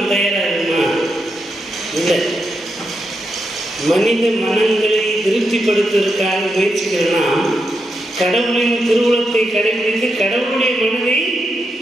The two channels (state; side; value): normal; both; correlation 0.84